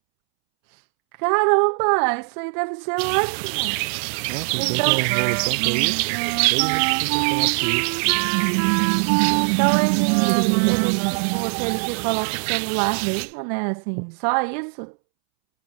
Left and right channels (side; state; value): left; silent; 65 dB below the other